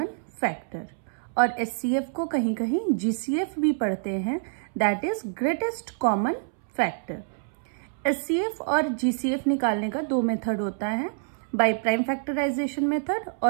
factor. और HCF को कहीं कहीं GCF भी पढ़ते हैं, that is greatest common factor. HCF और GCF निकालने का दो मेथड होता है, by prime factorization method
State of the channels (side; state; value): left; silent; 60 dB below the other